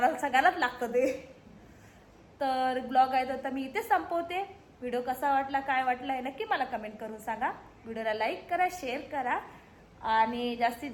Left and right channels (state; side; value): identical; both; correlation 1.00